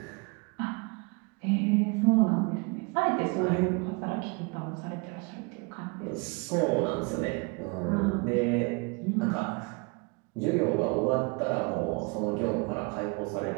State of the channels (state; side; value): quieter; left; 30.6 dB